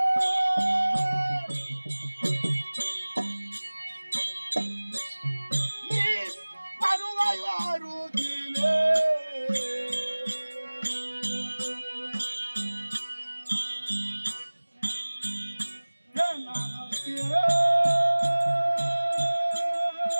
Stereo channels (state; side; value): inverted; both; correlation -1.00